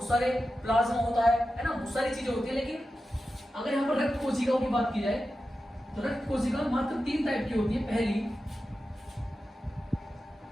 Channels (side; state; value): both; normal; correlation 0.92